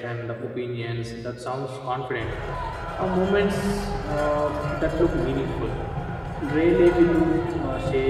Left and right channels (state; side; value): identical; both; correlation 1.00